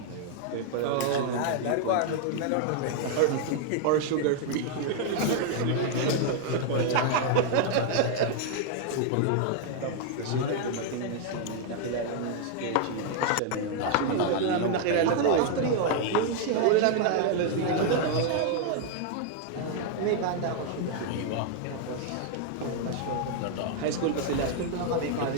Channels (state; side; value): different; both; correlation 0.00